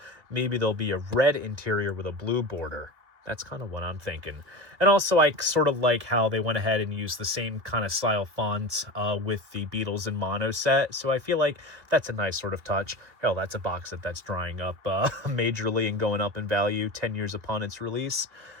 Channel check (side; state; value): left; late; 2.6 ms